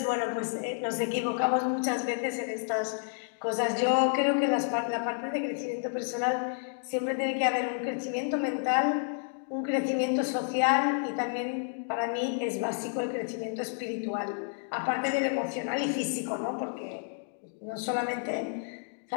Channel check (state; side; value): silent; right; digital silence